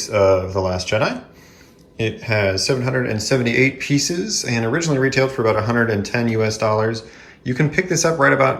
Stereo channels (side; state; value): both; identical; correlation 1.00